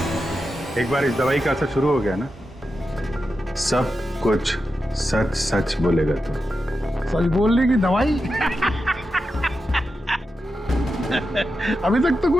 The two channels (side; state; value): both; normal; correlation 0.89